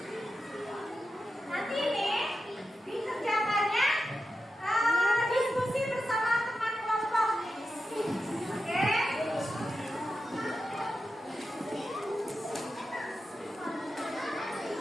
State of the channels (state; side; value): normal; both; correlation 0.90